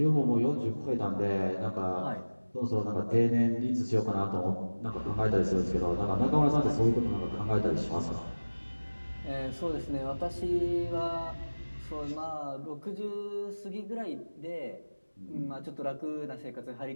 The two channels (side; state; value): both; inverted; correlation -1.00